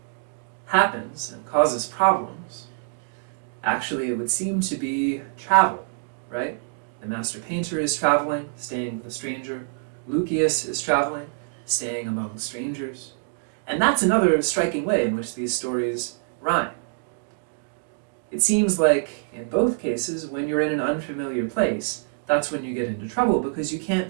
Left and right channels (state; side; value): silent; left; digital silence